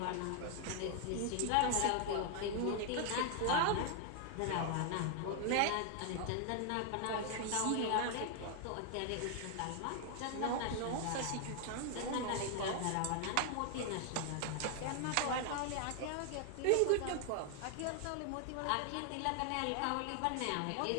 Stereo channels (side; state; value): both; different; correlation 0.00